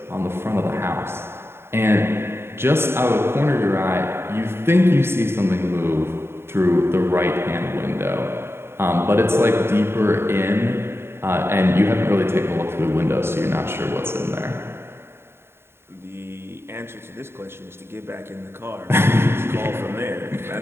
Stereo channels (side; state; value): left; late; 0.11 ms